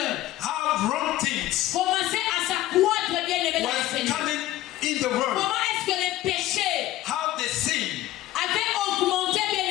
how wrong things commençaient à s'accroître, bien aimé, dans le was Seigneur? coming in the world, Comment est-ce que les péchés how the sin avaient augmenté, bien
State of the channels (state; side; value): quieter; right; 15.2 dB